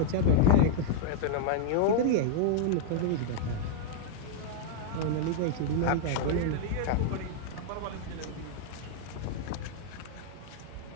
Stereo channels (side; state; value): both; different; correlation -0.01